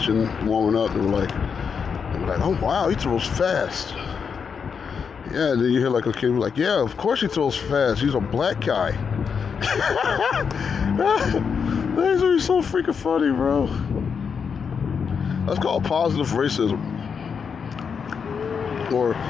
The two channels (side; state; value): right; quieter; 6.3 dB